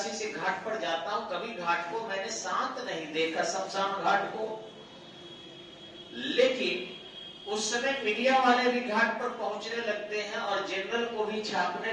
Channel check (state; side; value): identical; both; correlation 1.00